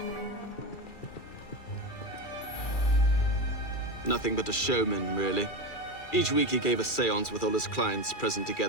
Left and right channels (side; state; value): right; late; 2.4 ms